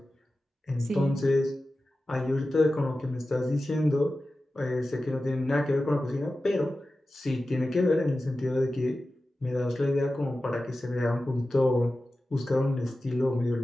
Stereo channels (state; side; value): normal; both; correlation 0.94